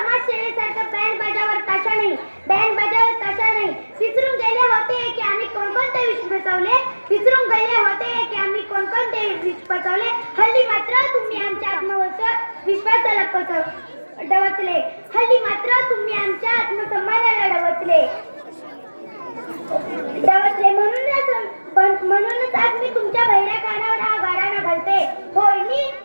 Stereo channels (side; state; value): both; inverted; correlation -1.00